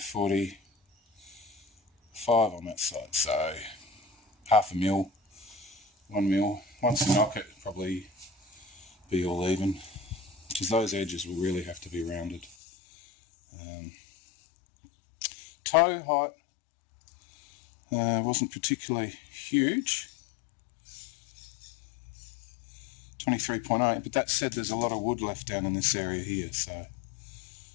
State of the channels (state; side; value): drops out; right; at 12.6 s